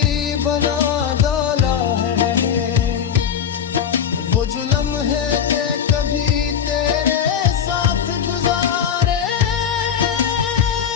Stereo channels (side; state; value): right; quieter; 8.1 dB